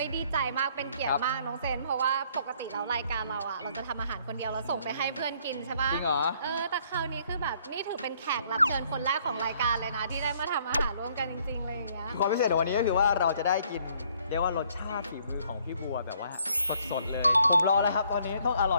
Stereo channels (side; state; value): both; inverted; correlation -0.64